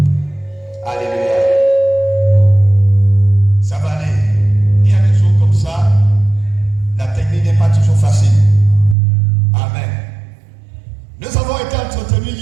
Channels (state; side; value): drops out; left; at 9.0 s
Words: Alléluia. Ça va aller. Il y a des jours comme ça, la technique n'est pas toujours facile. Amen. Nous avons été entretenus